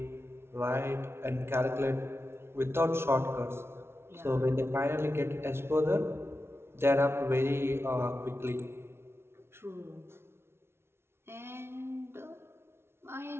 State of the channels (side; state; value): left; late; 0.12 ms